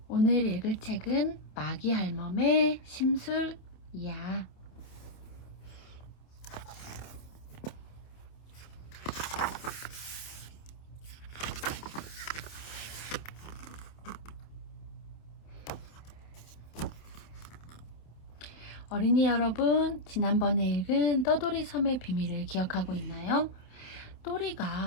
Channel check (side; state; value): right; late; 28 ms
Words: 오늘 읽을 책은 마기 할멈의 심술이야. 어린이 여러분, 지난번에 읽은 떠돌이 섬의 비밀을 기억하고 있나요?